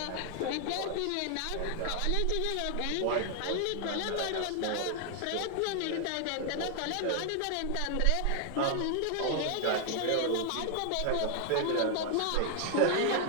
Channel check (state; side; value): different; both; correlation 0.00